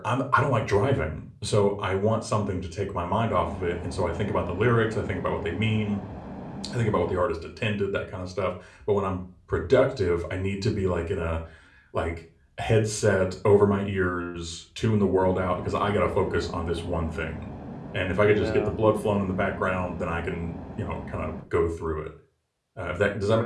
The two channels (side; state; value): both; identical; correlation 1.00